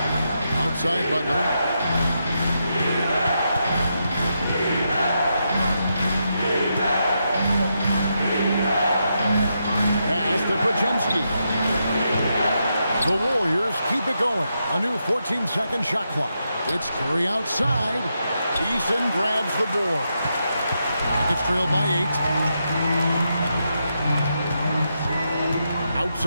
Outside Butler. Pass to Podziemski. The Warriors keep it going. A new 14-second shot clock. It's Curry outside. Eason grabs the board. Rockets trailed by 8.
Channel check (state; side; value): inverted; both; correlation -0.83